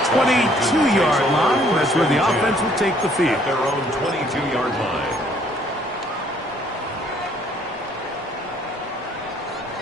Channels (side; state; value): both; normal; correlation 0.62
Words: 22-yard line. That's where the offense will take the field. At their own 22-yard line.